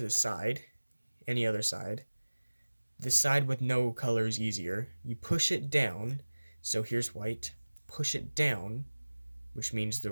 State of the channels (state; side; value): inverted; both; correlation -1.00